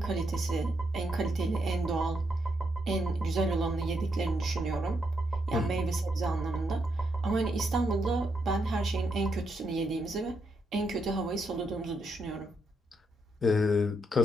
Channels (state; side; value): normal; both; correlation 0.79